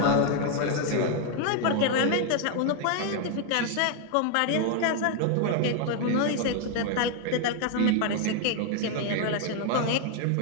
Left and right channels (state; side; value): different; both; correlation 0.00